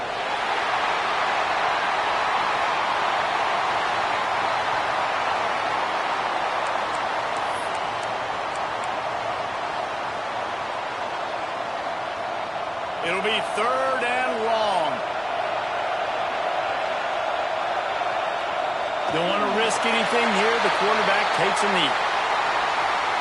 It'll be 3rd and long. Don't want to risk anything here. The quarterback takes a knee.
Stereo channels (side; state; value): both; identical; correlation 1.00